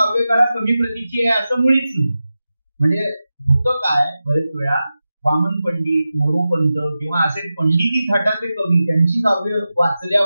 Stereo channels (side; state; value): both; inverted; correlation -0.93